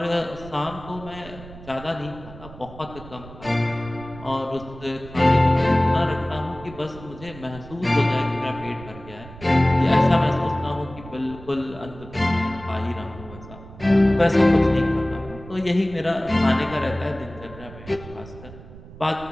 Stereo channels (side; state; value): right; noise; rumble, 17 dB below the sound